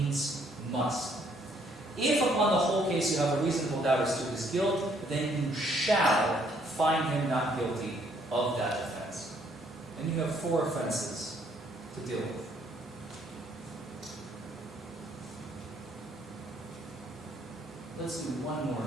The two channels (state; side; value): normal; both; correlation 0.67